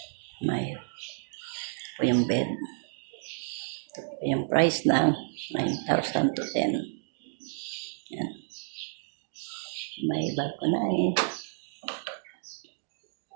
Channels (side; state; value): left; silent; digital silence